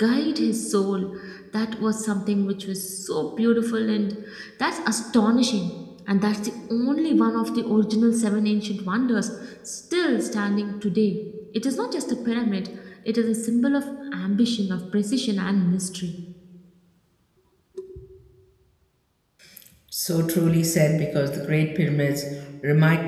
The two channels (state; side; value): identical; both; correlation 1.00